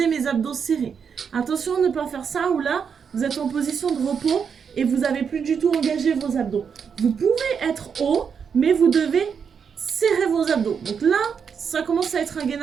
mes abdos serrés. Attention à ne pas faire ça, où là vous êtes en position de repos et vous n'avez plus du tout engagé vos abdos. Vous pouvez être haut, mais vous devez serrer vos abdos. Donc là, ça commence à être un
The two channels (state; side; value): quieter; left; 6.7 dB